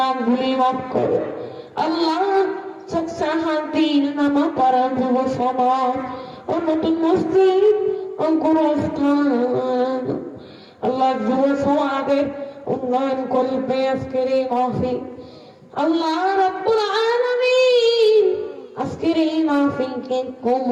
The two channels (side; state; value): both; identical; correlation 1.00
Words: মাফ করো আল্লাহ। শান্তির নামা পাড়া যুব সমাজ ও নতুন মসজিদ ও গুরুস্থান আল্লাহ যুব সমাজের উন্নয়ন করবে আজকের এই মাহফিল। আল্লাহ রাব্বুল আলামিন আজকের এই মাহফিলকে